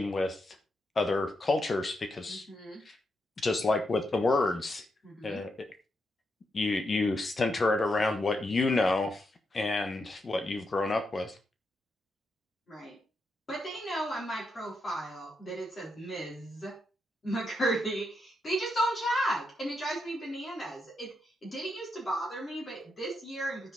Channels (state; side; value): normal; both; correlation 0.83